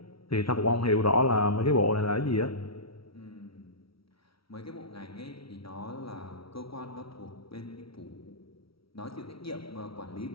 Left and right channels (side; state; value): right; late; 0.75 ms